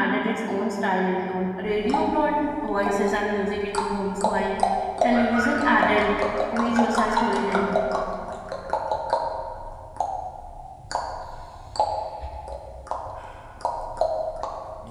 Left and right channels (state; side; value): identical; both; correlation 1.00